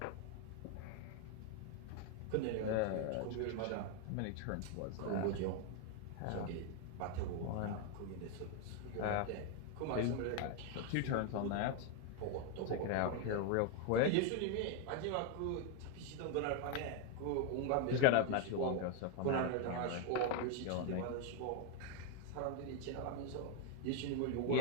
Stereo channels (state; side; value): different; both; correlation 0.01